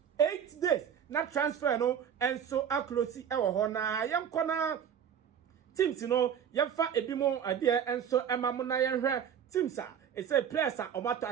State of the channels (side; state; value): left; quieter; 8.4 dB